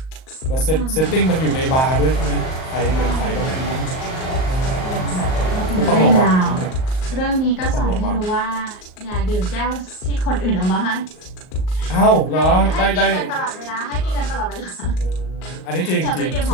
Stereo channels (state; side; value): late; right; 38 ms